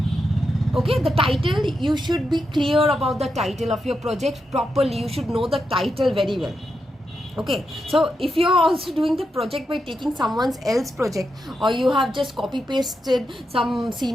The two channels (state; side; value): normal; both; correlation 0.86